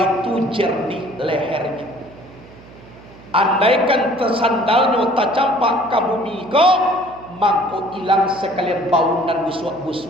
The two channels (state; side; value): noise; right; hum, 21 dB below the sound